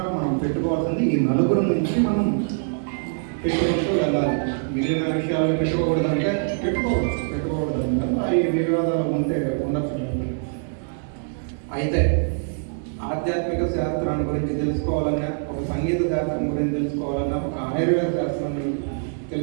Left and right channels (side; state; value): left; silent; digital silence